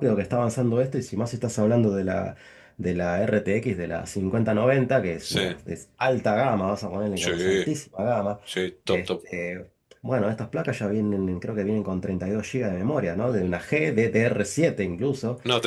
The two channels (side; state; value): both; identical; correlation 1.00